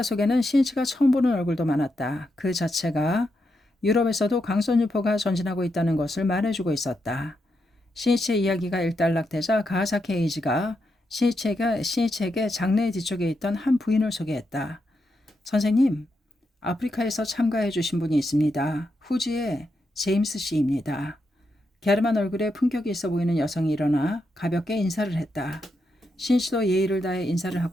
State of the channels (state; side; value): normal; both; correlation 0.83